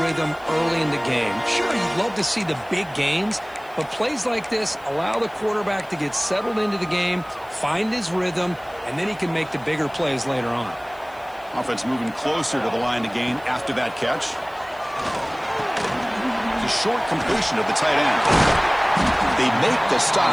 rhythm early in the game. Sure, you'd love to see the big gains, but plays like this allow the quarterback to get settled into the game, find his rhythm, and then he can make the bigger plays later on. Offense moving closer to the line to gain after that catch. The short completion of the tight end. They make the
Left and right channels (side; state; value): left; noise; hiss, 28 dB below the sound